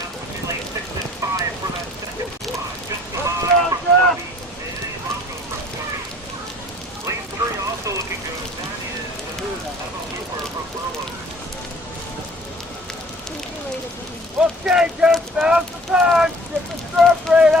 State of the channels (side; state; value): both; normal; correlation 0.53